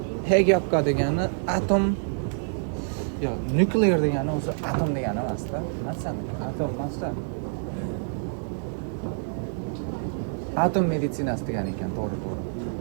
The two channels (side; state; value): left; silent; 60 dB below the other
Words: Hegapka degani atom yo, nuklear degani o'zi atom degani emas-da. Masalan, atom emas-da. Atom meditsinasi degan ekan, to'g'ri.